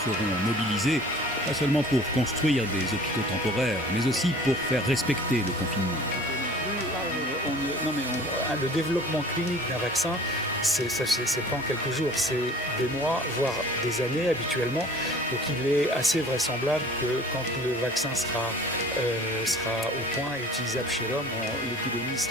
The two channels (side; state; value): both; normal; correlation 0.47